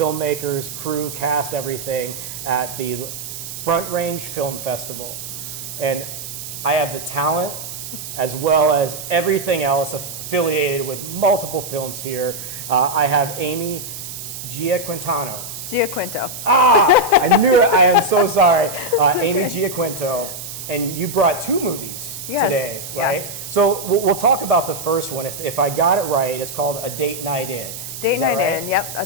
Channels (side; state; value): right; noise; hiss, 9 dB below the sound